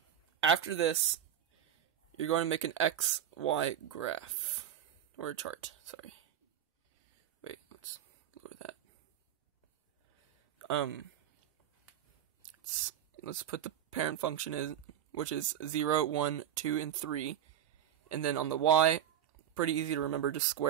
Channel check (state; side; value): quieter; left; 10.2 dB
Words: after this, you're going to make an XY graph, or a chart, sorry. Wait, let's lower that. Let's put the parent function in, which is 0, 1, 2, and 3. And then on the y, pretty easy to remember, just